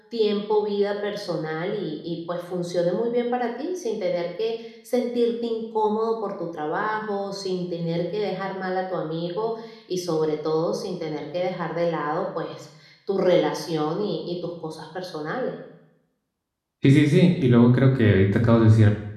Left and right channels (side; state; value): both; identical; correlation 1.00